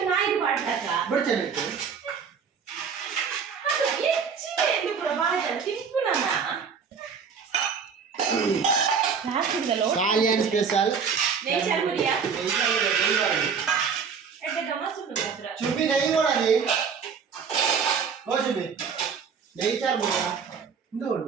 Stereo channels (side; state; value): left; quieter; 6.2 dB